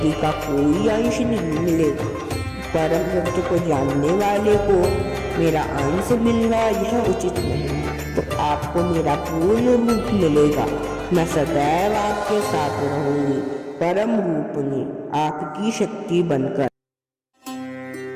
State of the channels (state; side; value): identical; both; correlation 1.00